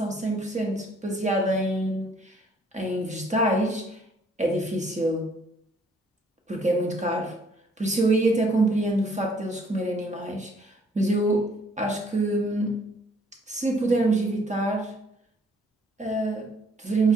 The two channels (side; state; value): both; normal; correlation 0.63